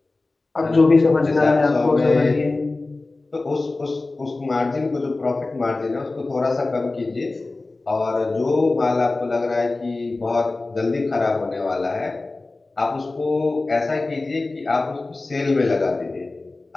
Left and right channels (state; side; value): quieter; right; 3.3 dB